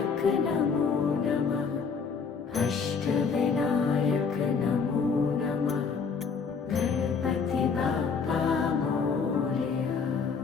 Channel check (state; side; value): quieter; right; 5.6 dB